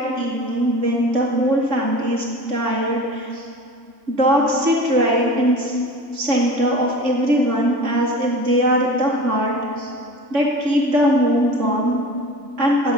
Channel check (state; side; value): late; left; 3.5 ms